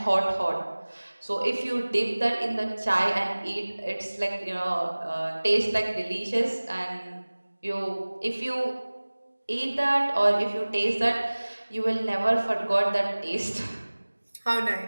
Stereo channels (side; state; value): both; inverted; correlation -1.00